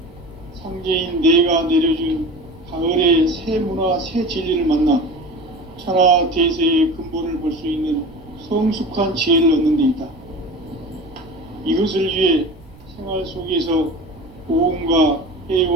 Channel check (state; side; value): noise; right; rumble, 24 dB below the sound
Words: 상제인 내가 내려준 가을의 새 문화, 새 진리를 만나 천하 대세의 근본을 볼 수 있는 성숙한 지혜를 얻는 데 있다. 이것을 위해 생활 속에서 보험과